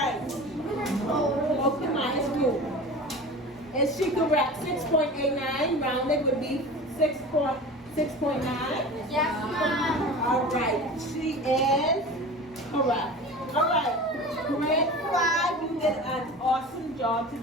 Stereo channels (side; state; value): both; normal; correlation 0.35